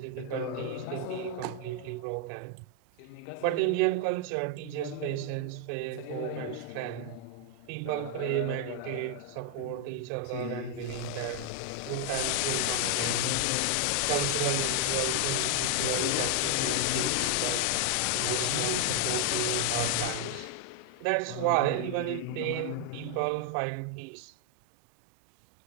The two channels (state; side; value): different; both; correlation 0.00